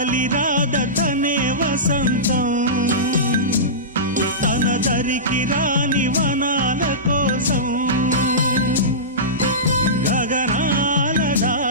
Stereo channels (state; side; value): normal; both; correlation -0.19